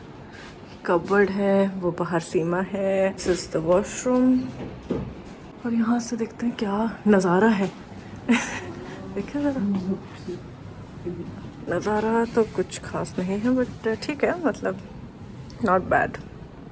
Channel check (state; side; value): identical; both; correlation 1.00